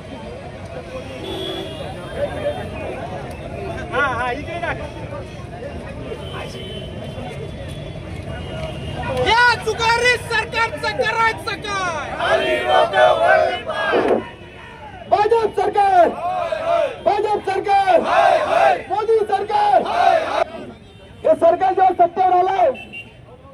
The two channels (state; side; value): identical; both; correlation 1.00